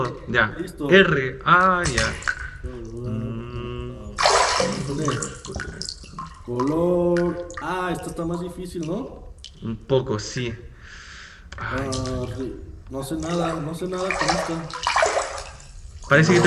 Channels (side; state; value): both; identical; correlation 1.00